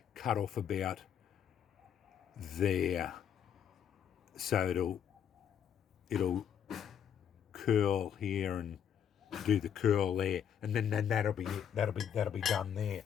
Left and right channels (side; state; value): right; quieter; 8.6 dB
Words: cut off about there. So it'll curl here and do the curl there, and then that'll be done there.